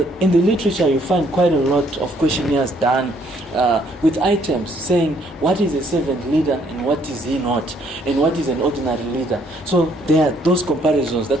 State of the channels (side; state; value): both; normal; correlation 0.66